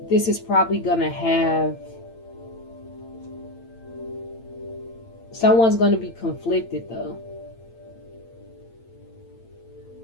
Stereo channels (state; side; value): late; right; 8.9 ms